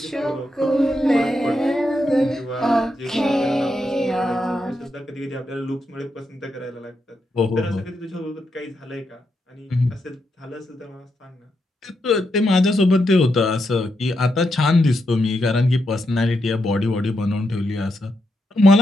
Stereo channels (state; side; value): normal; both; correlation 0.83